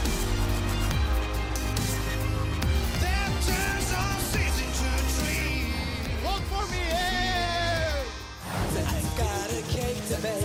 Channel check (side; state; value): both; identical; correlation 1.00